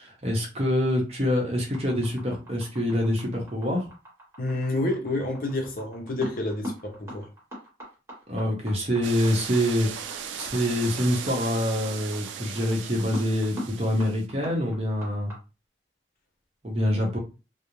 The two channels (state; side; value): normal; both; correlation 0.71